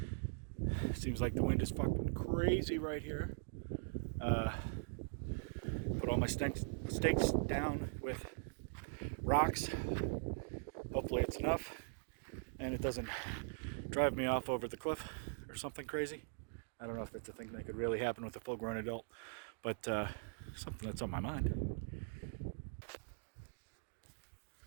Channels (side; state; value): left; silent; digital silence